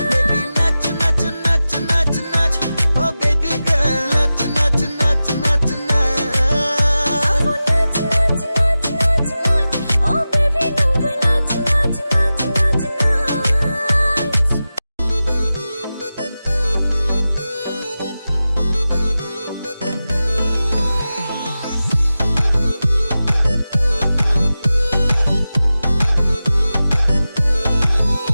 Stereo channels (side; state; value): both; inverted; correlation -0.94